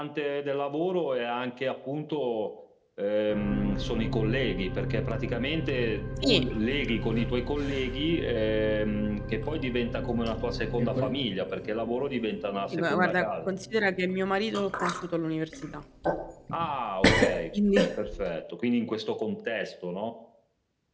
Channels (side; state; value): both; identical; correlation 1.00